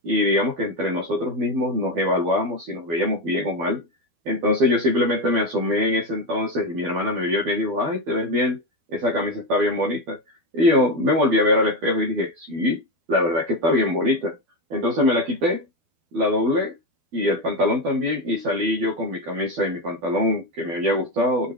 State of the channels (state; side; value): late; left; 12 ms